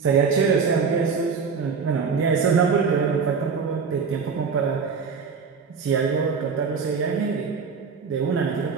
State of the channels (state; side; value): quieter; left; 5.5 dB